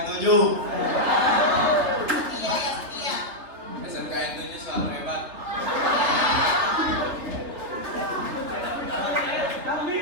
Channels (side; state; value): left; late; 3.5 ms